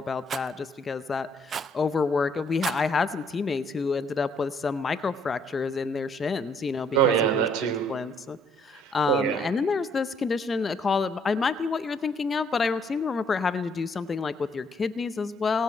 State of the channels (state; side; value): normal; both; correlation 0.67